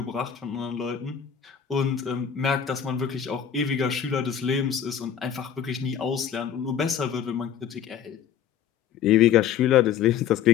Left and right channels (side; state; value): right; quieter; 8.7 dB